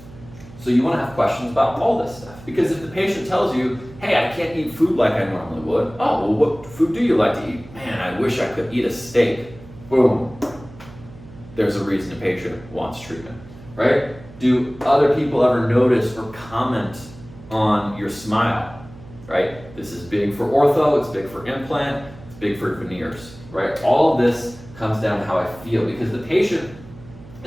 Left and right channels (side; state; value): right; noise; hum, 19 dB below the sound